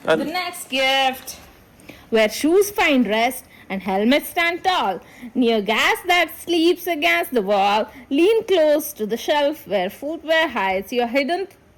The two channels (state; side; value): identical; both; correlation 1.00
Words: the next gift, where shoes find rest and helmets stand tall, near gas that sleeps against the wall, lean close to the shelf where footwear hides your hidden